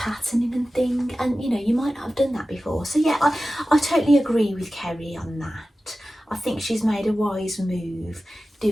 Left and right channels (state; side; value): normal; both; correlation 0.95